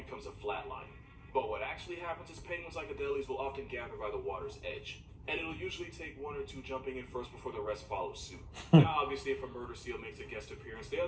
a flatline. But what actually happens is penguins like Adelies will often gather by the water's edge. And it'll usually take 1 or 2 jumping in first before the rest follow suit. Now, obviously, if a murder seal makes a guest appearance, the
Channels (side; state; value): both; identical; correlation 1.00